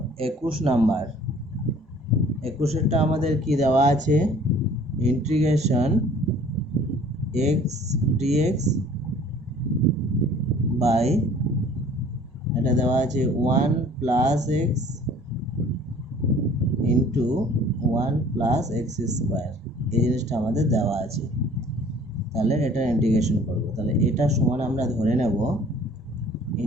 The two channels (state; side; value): normal; both; correlation 0.52